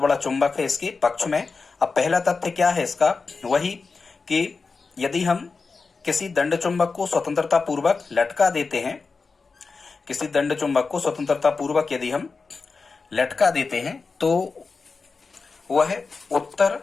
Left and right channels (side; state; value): right; quieter; 4.5 dB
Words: चुंबक है इसके पक्ष में। अब पहला तथ्य क्या है इसका, वही कि यदि हम किसी दंड चुंबक को स्वतंत्रता पूर्वक लटका देते हैं, किसी दंड चुंबक को स्वतंत्रता पूर्वक यदि हम लटका देते हैं तो वह उत्तर